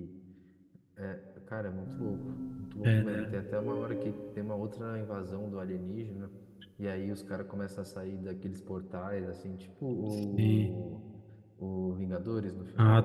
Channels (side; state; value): both; identical; correlation 1.00